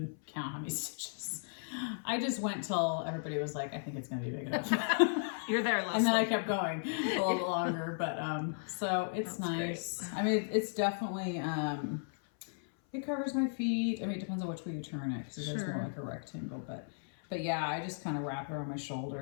count how many stitches. I just went till everybody was like, I think it's going to be big enough. You're there, Leslie. And then I kept going a little bit longer, but so it's nice. Great. I mean, it's definitely, it covers my feet. I mean, it depends on which way you turn it, because it is more like a rectangle, but yeah, I just kind of wrap it around my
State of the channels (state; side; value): silent; right; 54 dB below the other